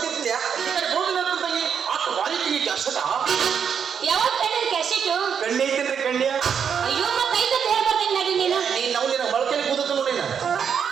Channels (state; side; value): quieter; left; 7.3 dB